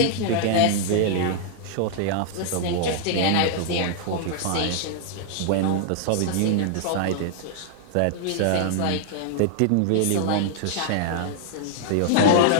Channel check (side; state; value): both; different; correlation -0.01